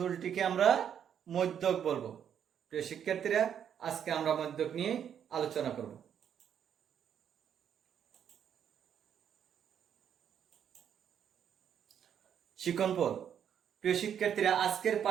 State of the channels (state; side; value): quieter; left; 8.7 dB